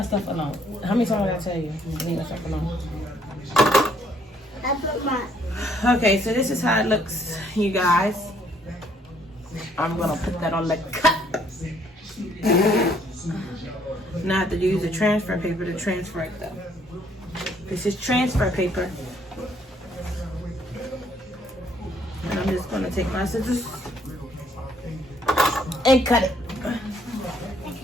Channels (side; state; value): both; normal; correlation 0.66